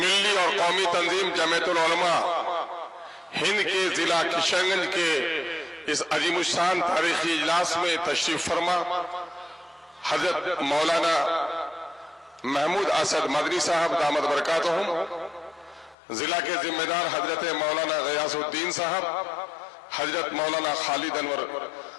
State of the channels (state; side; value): drops out; right; at 16.0 s